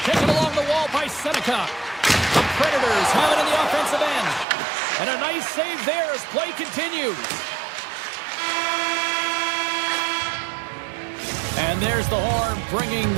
Seneca. The Predators have it in the offensive end. And a nice save there as play continues. And there's the horn, bringing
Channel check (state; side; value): drops out; left; at 4.5 s